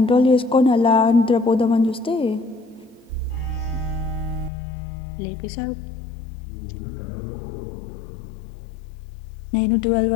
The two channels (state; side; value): drops out; right; at 4.5 s